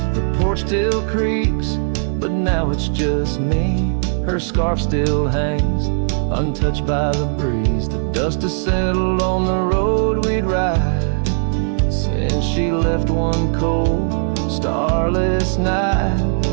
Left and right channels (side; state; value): left; silent; digital silence